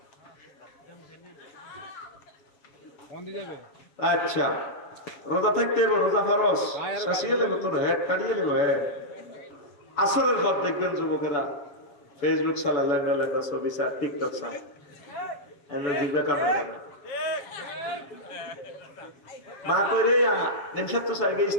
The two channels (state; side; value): late; right; 6.8 ms